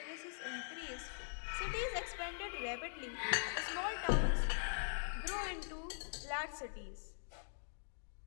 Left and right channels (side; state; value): right; silent; digital silence